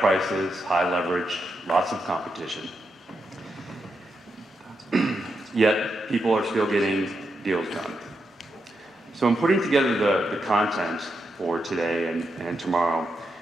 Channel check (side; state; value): both; normal; correlation 0.84